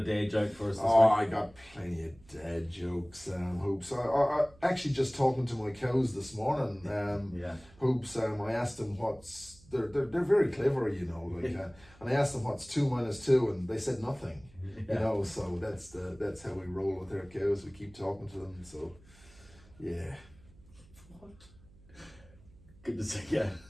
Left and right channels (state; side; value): noise; right; hum, 25 dB below the sound